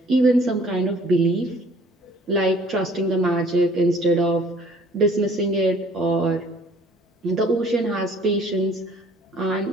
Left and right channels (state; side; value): normal; both; correlation 0.55